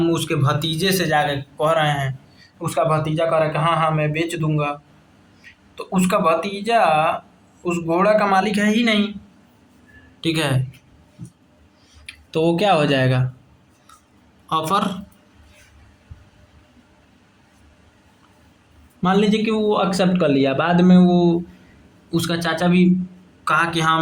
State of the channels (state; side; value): identical; both; correlation 1.00